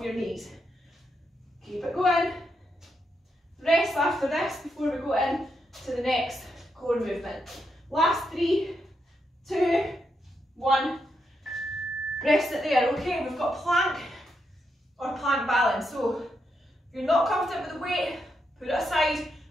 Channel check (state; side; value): normal; both; correlation 0.82